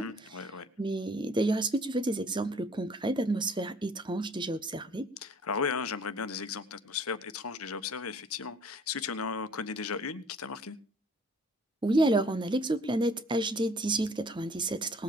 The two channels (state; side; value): normal; both; correlation 0.55